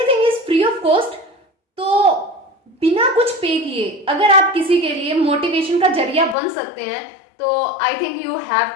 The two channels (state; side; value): drops out; right; at 6.4 s